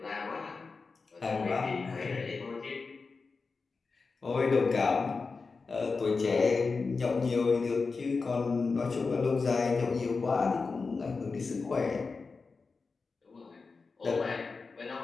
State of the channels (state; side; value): quieter; right; 4.4 dB